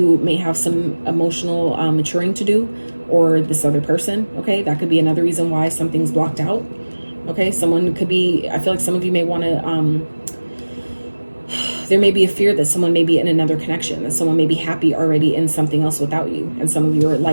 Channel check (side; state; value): both; inverted; correlation -1.00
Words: may have some emotional maturing to do, or this other person. Okay, that could be another reason why something's blocked out. Okay, someone could be, I feel like some of you may want to, there may be a fear that someone may be in another connection, that someone may be happy already in something else without you. And some of you are